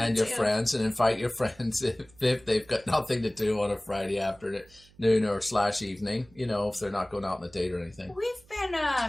it your too. friends, and invite your friends if they've got nothing to do on a Friday afternoon or / evening. You know, if they're not going out on a date or anything. We've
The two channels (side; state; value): right; noise; hum, 27 dB below the sound